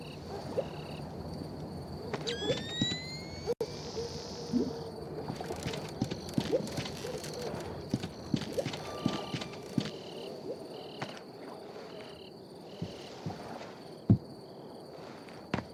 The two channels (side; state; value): both; identical; correlation 1.00